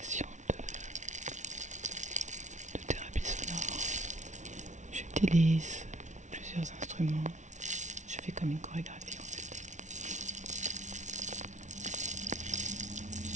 fais comme une chorégraphie en fait.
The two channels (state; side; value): late; left; 0.35 ms